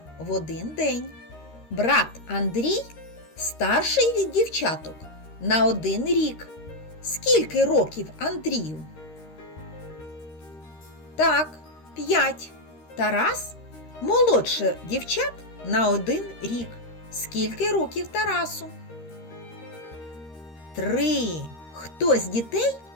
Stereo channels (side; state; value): right; late; 13 ms